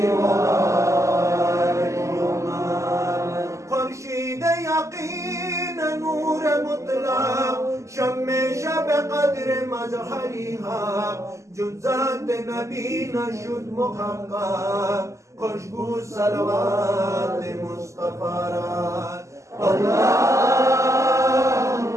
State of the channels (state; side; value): late; left; 0.15 ms